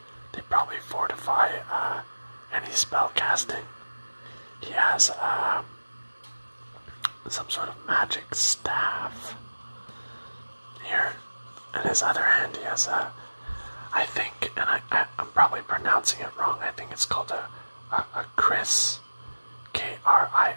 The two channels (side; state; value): both; inverted; correlation -1.00